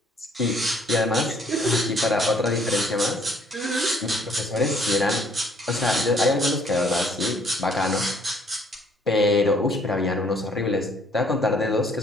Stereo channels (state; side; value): normal; both; correlation 0.62